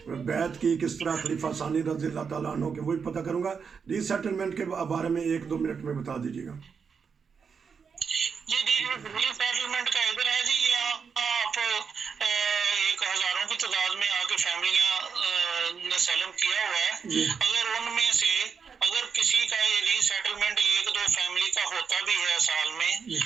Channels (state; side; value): quieter; left; 6.1 dB